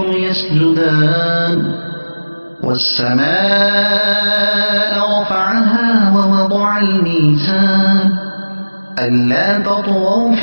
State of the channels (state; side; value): inverted; both; correlation -1.00